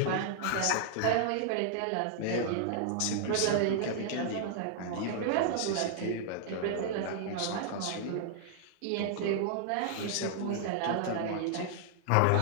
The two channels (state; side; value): different; both; correlation -0.01